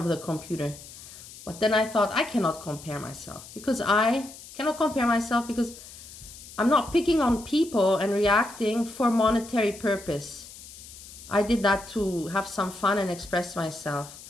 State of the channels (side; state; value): left; noise; hiss, 16 dB below the sound